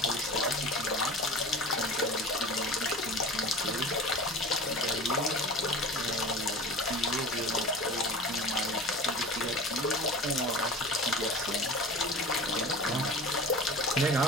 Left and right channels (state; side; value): normal; both; correlation 0.36